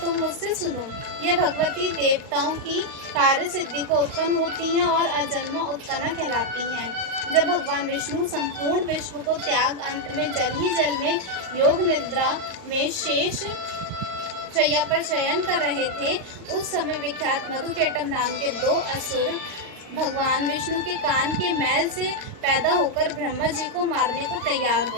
तुम मुझसे सुनो। यह भगवती देवताओं की कार्य सिद्धि को उत्पन्न होती हैं और अजन्मा उत्पन्ना कहलाती हैं। जब भगवान विष्णु संपूर्ण विश्व को त्याग अंत में जल ही जल में योग निद्रा में शेष शैया पर शयन कर रहे थे, उस समय विख्यात मधुकेटम नाम के 2 असुर भगवान विष्णु के कान के मैल से पैदा होकर ब्रह्मा जी को मारने को तैयार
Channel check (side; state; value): left; late; 38 ms